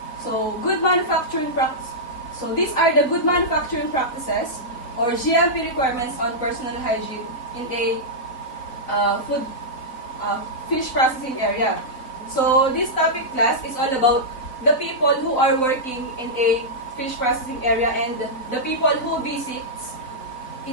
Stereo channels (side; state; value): right; late; 4.0 ms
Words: So, good manufacturing practice. So, these are the good manufacturing practices or GMP requirements on personal hygiene in a fish processing area. So, this topic class is all about the people who are working in a fish processing area and the people who visits